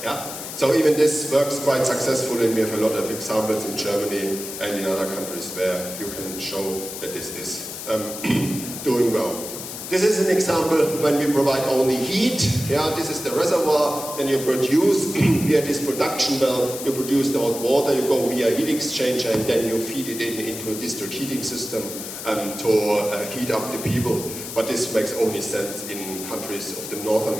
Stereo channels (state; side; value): noise; left; hiss, 9 dB below the sound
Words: Yeah. So even this works quite successfully, and we have a lot of examples in Germany and in other countries where you can show that this is doing well. This is an example when we provide only heat. Yeah, this is the reservoir, and you produce via this production well, you produce the hot water, you go via heat exchanger, and then you feed it into a district heating system to heat up the people. But this makes only sense in countries of the northern